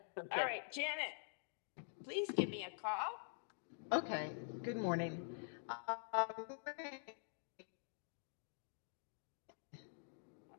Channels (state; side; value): silent; right; digital silence